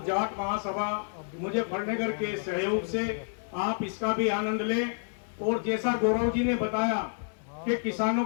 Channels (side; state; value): right; silent; 58 dB below the other